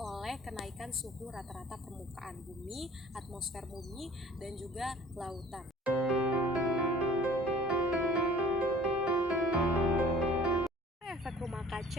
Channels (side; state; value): both; normal; correlation 0.49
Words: kenaikan suhu rata-rata permukaan bumi, atmosfer bumi, dan juga lautan. Efek rumah